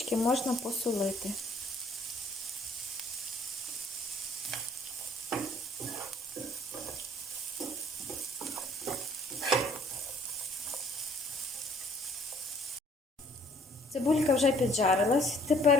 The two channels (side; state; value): both; normal; correlation 0.60